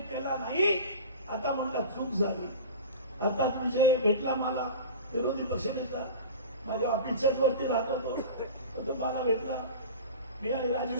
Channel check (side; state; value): both; inverted; correlation -0.34